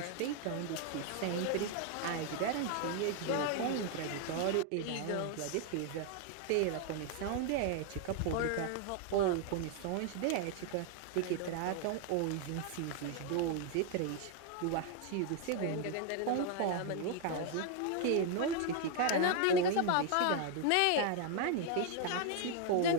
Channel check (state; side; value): different; both; correlation 0.00